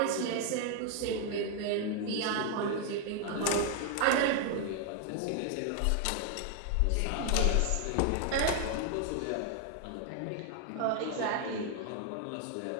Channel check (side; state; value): both; different; correlation 0.00